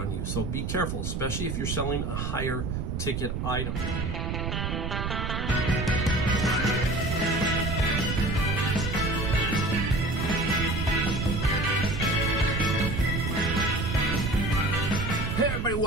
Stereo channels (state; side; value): noise; right; rumble, 2 dB below the sound